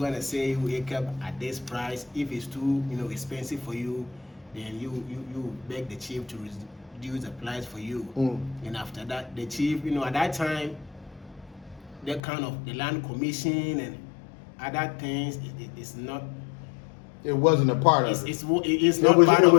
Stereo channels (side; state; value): right; drops out; at 12.2 s